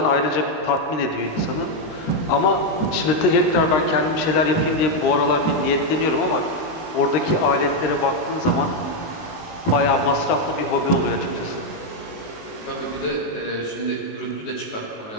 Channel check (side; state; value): right; late; 19 ms